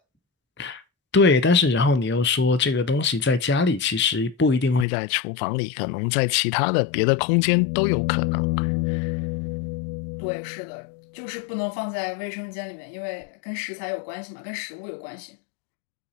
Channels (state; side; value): drops out; right; at 4.9 s